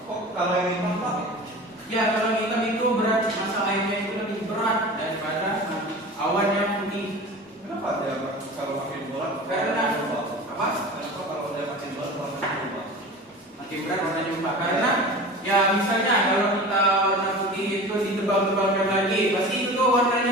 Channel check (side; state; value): both; normal; correlation 0.36